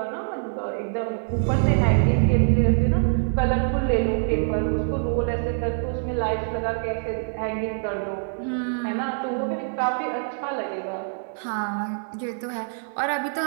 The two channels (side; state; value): left; silent; 62 dB below the other